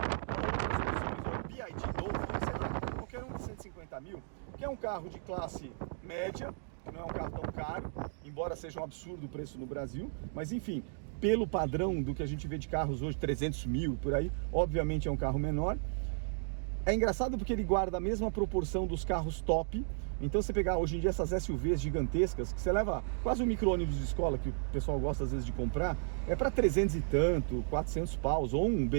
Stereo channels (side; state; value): left; silent; digital silence